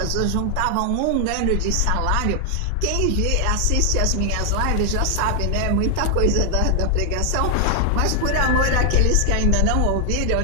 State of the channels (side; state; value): both; different; correlation 0.00